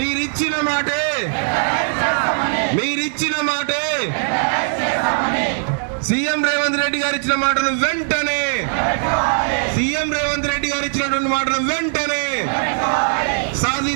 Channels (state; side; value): silent; left; digital silence